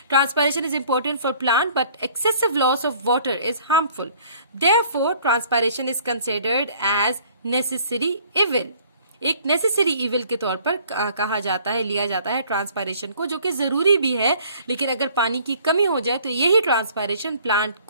Transpiration is important for plant but excessive loss of water is harmful. Therefore transpiration is considered as necessary evil. एक नेसेसरी इविल के तौर पर कहा जाता है, लिया जाता है ट्रांसपायरेशन को, जो कि जरूरी भी है, लेकिन अगर पानी की कमी हो जाए तो यही ट्रांसपायरेशन प्लांट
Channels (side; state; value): both; inverted; correlation -0.55